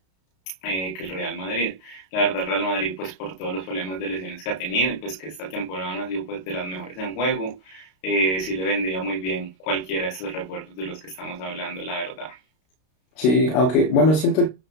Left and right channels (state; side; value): late; right; 32 ms